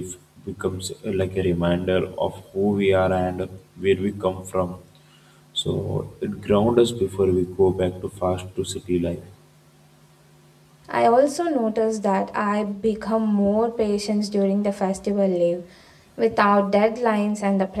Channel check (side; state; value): both; identical; correlation 1.00